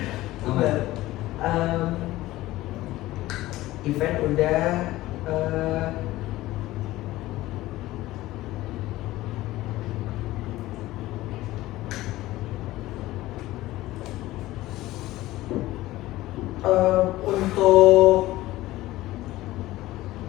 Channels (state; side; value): quieter; right; 17.0 dB